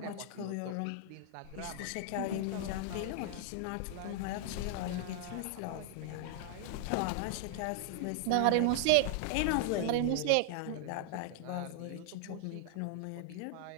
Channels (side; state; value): both; different; correlation 0.00